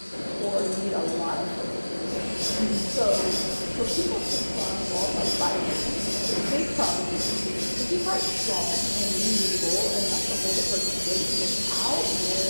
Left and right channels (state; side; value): inverted; both; correlation -1.00